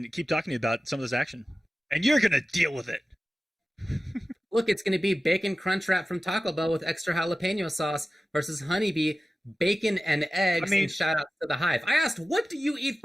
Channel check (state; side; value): normal; both; correlation 0.95